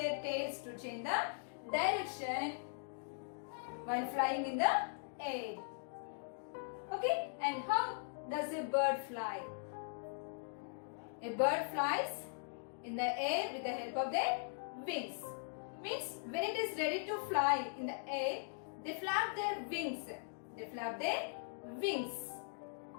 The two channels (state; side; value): silent; right; digital silence